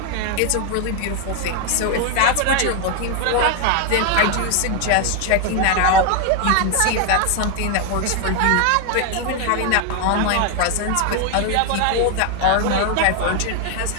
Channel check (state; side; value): different; both; correlation 0.01